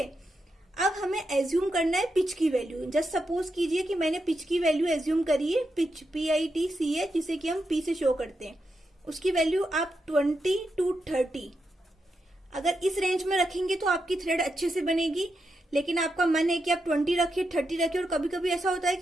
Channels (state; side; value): normal; both; correlation 0.85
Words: अब हमें एज्यूम करना है पिच की वैल्यू। जस्ट सपोज कीजिए कि मैंने पिच की वैल्यू एज्यूम करी है, पिच PITCH, जिसे कि हम P से शो करते हैं। उसकी वैल्यू आप 20 to 30 अगर इस रेंज में रखेंगे तो आपकी थ्रेड अच्छे से बनेगी। लेकिन आपका मन है कि आप 20 रखिए, 30 रखिए, और कभी कभी ऐसा होता है